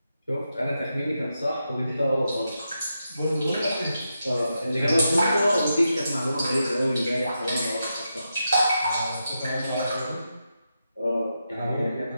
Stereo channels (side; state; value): both; inverted; correlation -0.86